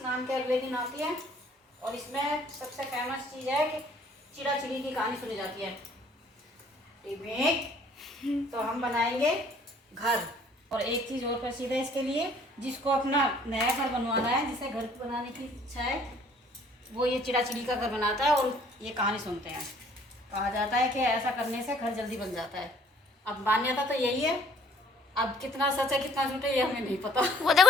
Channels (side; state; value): both; normal; correlation 0.57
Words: के अगले दिन आती है और इसमें सबसे फेमस चीज़ है कि चिड़ा चिड़ी की कहानी सुनी जाती है। तो हम बनाएंगे घर। और एक चीज़ और प्रसिद्ध है इसके लिए, जिसको अपना नया घर बनवाना है, जिसे घर बनाने की इच्छा है, वो ये चिड़ा चिड़ी का घर बनाता है और ये कहानी सुनते हैं। कहा जाता है कि ऐसा करने से घर जल्दी बन जाता है। अब मान्यता तो यही है, अब कितना सच है कितना झूठ है ये हमें नहीं पता। वो